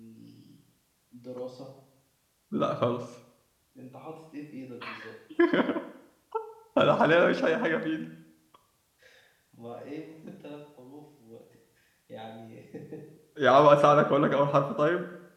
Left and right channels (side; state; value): both; identical; correlation 1.00